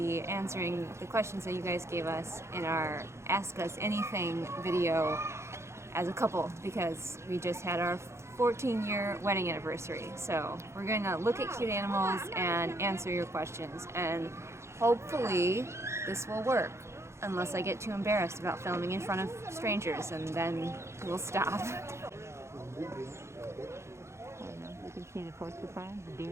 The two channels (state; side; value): late; left; 0.13 ms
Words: answering the questions that you guys gave us in our Ask Us Anything video as a couple, because we just had our 14-year wedding anniversary. So we're going to look at cute animals and answer your questions, and hopefully this will work. Unless I get too embarrassed about filming in front of strangers, and then we'll stop. I don't know if you can see the porcupine.